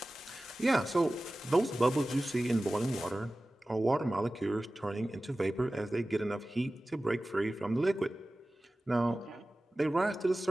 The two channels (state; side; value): normal; both; correlation 0.96